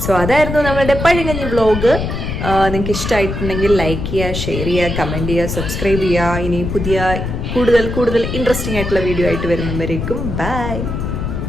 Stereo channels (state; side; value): noise; left; rumble, 4 dB below the sound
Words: സോ അതായിരുന്നു നമ്മളുടെ പഴങ്കഞ്ഞി വ്ലോഗ്. നിങ്ങൾക്ക് ഇഷ്ടമായിട്ടുണ്ടെങ്കിൽ ലൈക്ക് ചെയ്യുക, ഷെയർ ചെയ്യുക, കമൻറ്റ് ചെയ്യുക, സബ്സ്ക്രൈബ് ചെയ്യുക. ഇനി പുതിയ കൂടുതൽ ഇൻട്രസ്റ്റിംഗ് ആയിട്ടുള്ള വീഡിയോ ആയിട്ട് വരുന്നവരേക്കും ബൈ.